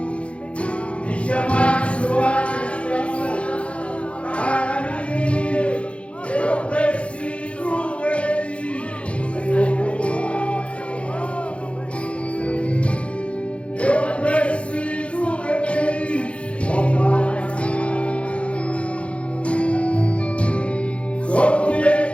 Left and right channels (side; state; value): right; late; 0.061 ms